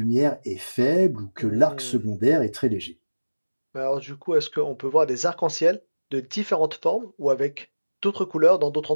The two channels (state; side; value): inverted; both; correlation -1.00